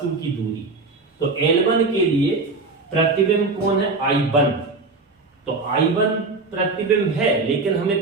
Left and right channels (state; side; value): quieter; left; 3.7 dB